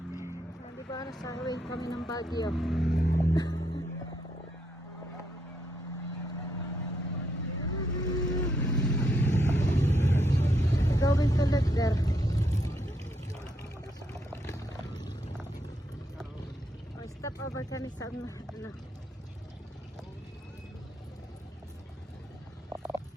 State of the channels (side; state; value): both; normal; correlation 0.77